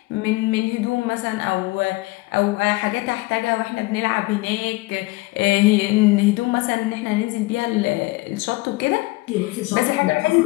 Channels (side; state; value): right; quieter; 22.1 dB